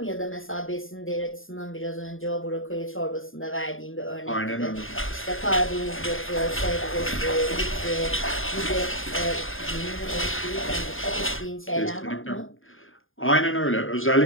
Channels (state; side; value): late; right; 0.59 ms